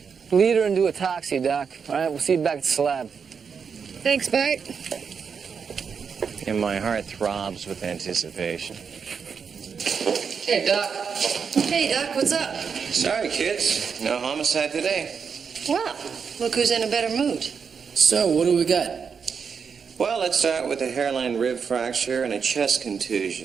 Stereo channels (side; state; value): left; quieter; 6.2 dB